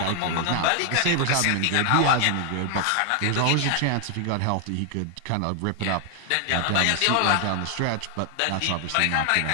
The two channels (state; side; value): different; both; correlation 0.00